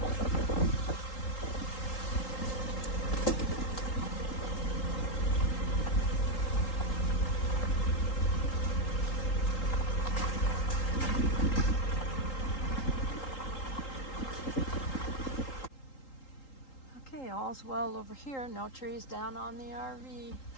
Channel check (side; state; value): right; late; 3.8 ms